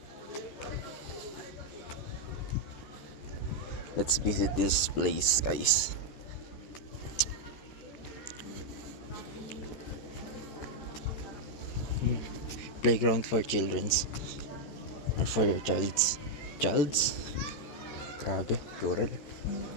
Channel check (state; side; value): late; right; 14 ms